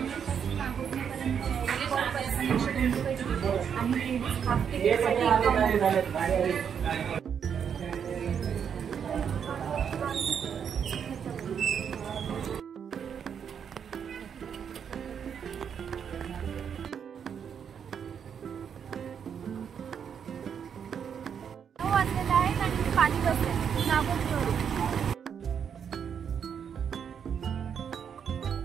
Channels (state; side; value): quieter; left; 7.6 dB